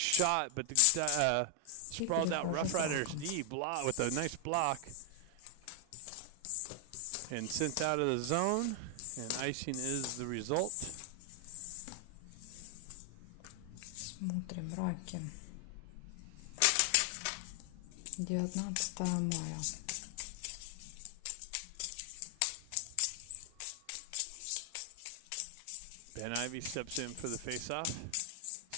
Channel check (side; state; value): both; different; correlation 0.00